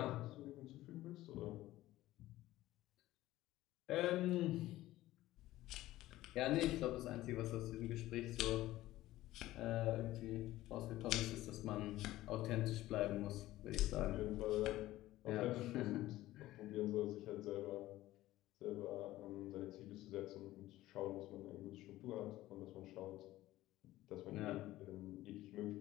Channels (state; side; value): quieter; right; 16.0 dB